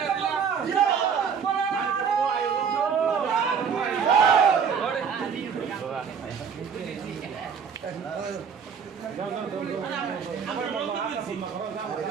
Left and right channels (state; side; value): quieter; left; 6.7 dB